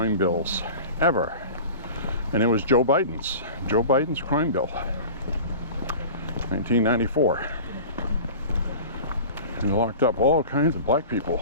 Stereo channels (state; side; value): inverted; both; correlation -0.37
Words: bills ever. And it was Joe Biden's crime bill, 1994. And locked up all kinds of black